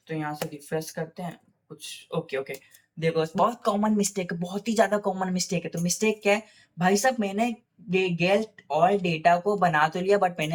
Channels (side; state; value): both; identical; correlation 1.00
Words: तो यहाँ से रिफ्रेश करते हैं कुछ, ओके ओके। देखो बहुत कॉमन मिस्टेक है, बहुत ही ज्यादा कॉमन मिस्टेक है। तो मिस्टेक क्या है भाई साहब, मैंने गेट ऑल डेटा को बना तो लिया, बट मैंने